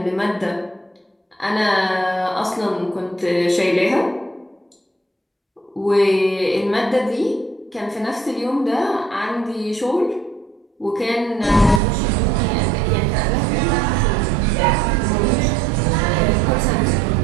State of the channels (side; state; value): left; drops out; at 11.8 s